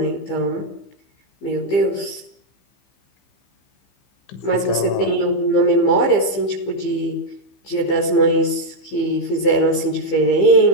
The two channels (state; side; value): late; right; 15 ms